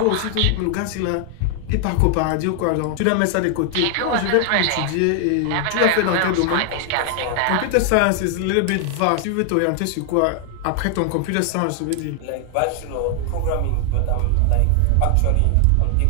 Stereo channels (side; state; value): both; different; correlation 0.00